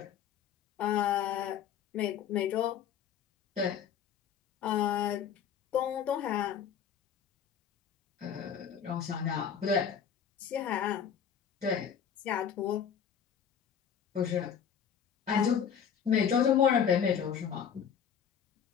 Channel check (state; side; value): quieter; right; 8.0 dB